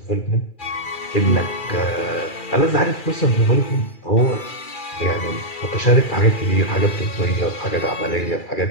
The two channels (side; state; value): right; late; 2.4 ms